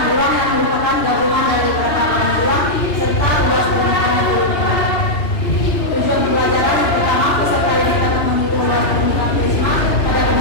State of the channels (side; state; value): right; late; 2.9 ms